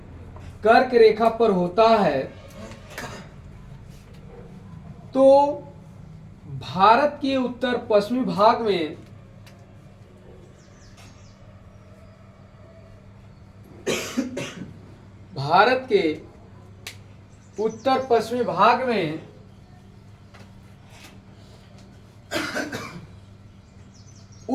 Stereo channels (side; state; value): both; identical; correlation 1.00